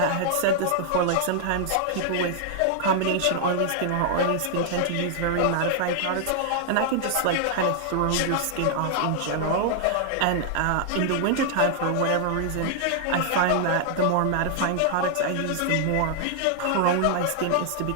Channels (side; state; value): both; different; correlation -0.01